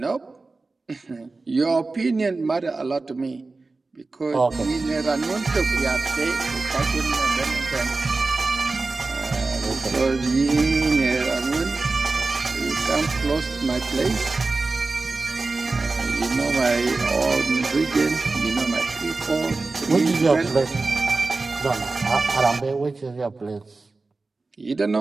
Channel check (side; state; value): left; quieter; 3.6 dB